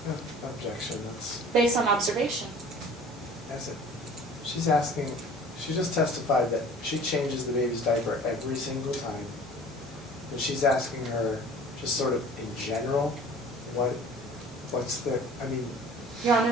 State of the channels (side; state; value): both; normal; correlation 0.46